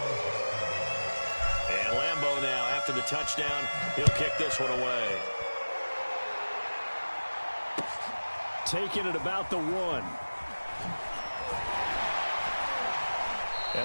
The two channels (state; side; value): inverted; both; correlation -1.00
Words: And Lambeau now, after the touchdown, he'll kick this one away. Taking it about the 1.